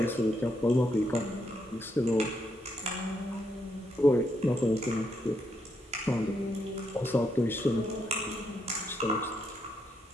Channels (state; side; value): normal; both; correlation 0.79